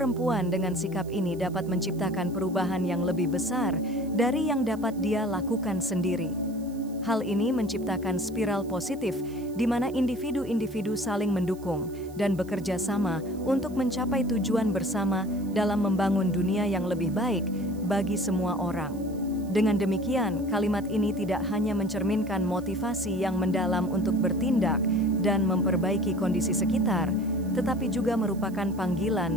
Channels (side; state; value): right; noise; hiss, 24 dB below the sound